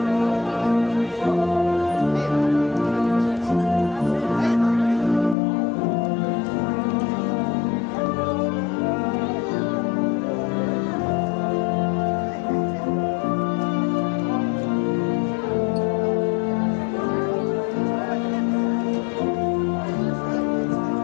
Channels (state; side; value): drops out; right; at 5.4 s